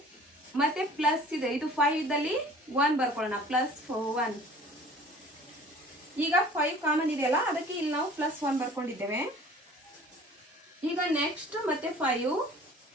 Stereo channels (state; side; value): normal; both; correlation 0.48